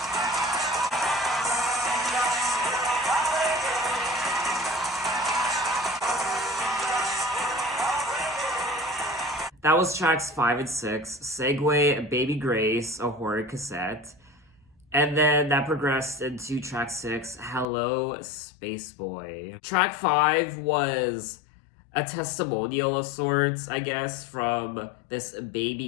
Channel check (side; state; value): right; drops out; at 17.7 s